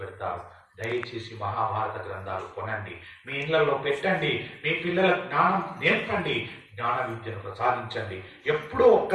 దయచేసి మహాభారత గ్రంథాలు కొనండి, మీ ఇళ్లలో పెట్టండి, మీ పిల్లల జ్ఞానం నేర్పండి, జ్ఞాన విద్యను ప్రసాదించండి. ఎప్పుడో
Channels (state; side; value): identical; both; correlation 1.00